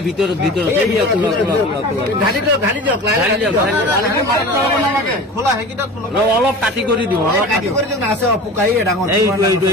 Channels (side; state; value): both; normal; correlation 0.36